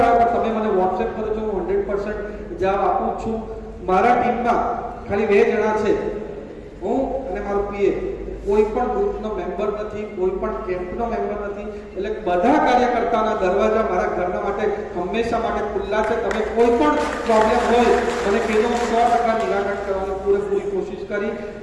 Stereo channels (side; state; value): both; identical; correlation 1.00